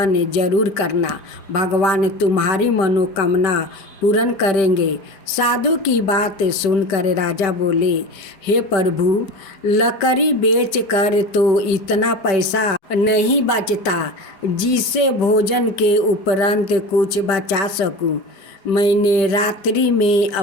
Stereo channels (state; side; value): late; right; 5.1 ms